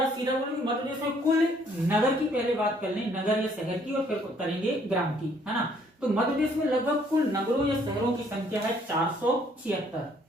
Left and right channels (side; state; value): both; normal; correlation 0.64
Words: सीधा बोलेंगे मध्य प्रदेश में कुल नगर की पहले बात कर लें, नगर या शहर की, और फिर करेंगे ग्राम की, है ना। तो मध्य प्रदेश में लगभग कुल नगरों या शहरों की संख्या है 476।